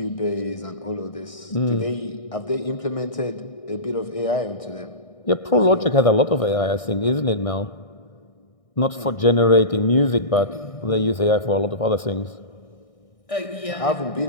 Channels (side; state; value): right; late; 1.6 ms